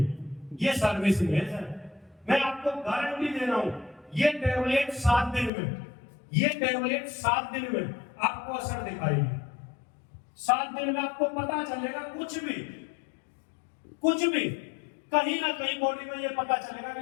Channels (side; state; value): right; drops out; at 5.5 s